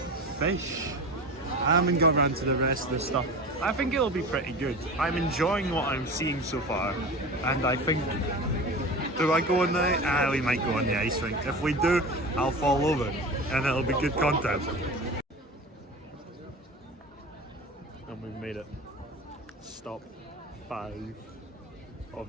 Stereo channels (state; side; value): normal; both; correlation 0.32